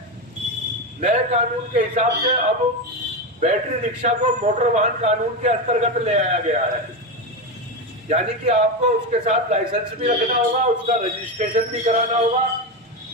नए कानून के हिसाब से अब बैटरी रिक्शा को मोटर वाहन कानून के अंतर्गत ले आया गया है, यानी कि आपको उसके साथ लाइसेंस भी रखना होगा, उसका रजिस्ट्रेशन भी कराना होगा,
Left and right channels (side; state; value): both; normal; correlation 0.15